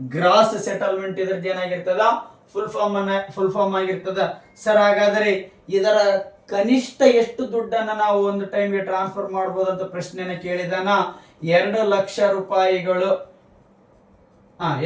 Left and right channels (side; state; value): both; identical; correlation 1.00